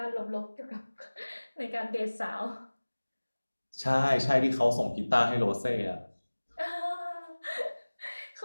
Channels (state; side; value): inverted; both; correlation -1.00